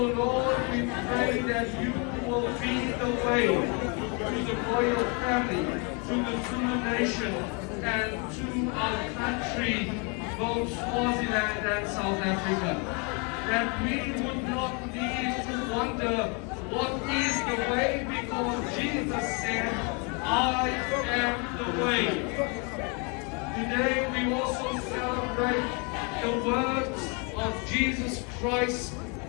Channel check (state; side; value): quieter; right; 33.7 dB